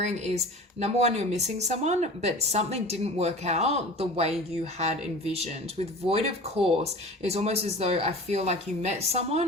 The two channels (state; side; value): normal; both; correlation 0.38